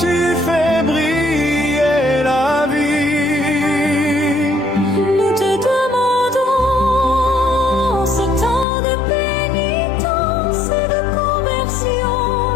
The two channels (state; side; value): drops out; right; at 8.7 s